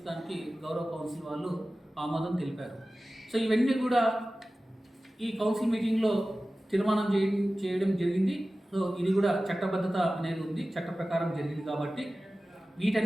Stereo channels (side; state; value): both; normal; correlation 0.96